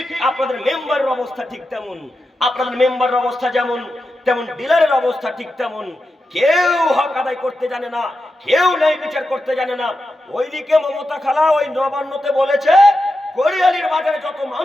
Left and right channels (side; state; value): both; normal; correlation 0.89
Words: আপনাদের মেম্বারের অবস্থা ঠিক তেমন। আপনাদের মেম্বারের অবস্থা যেমন, তেমন ডিলারের অবস্থা ঠিক তেমন। কেউ হক আদায় করতে জানে না, কেউ ন্যায় বিচার করতে জানে না। ওইদিকে মমতা খালা ওই নবান্নতে বলেছে, কোরিয়ালির বাজারে যত